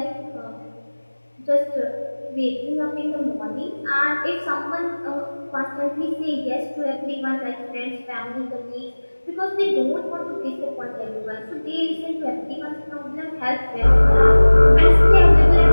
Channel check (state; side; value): inverted; both; correlation -1.00